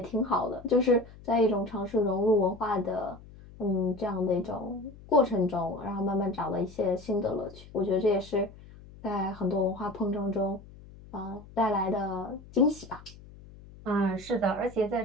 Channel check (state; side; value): noise; left; hum, 19 dB below the sound